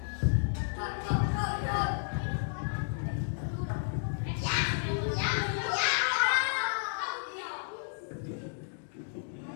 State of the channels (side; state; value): right; silent; digital silence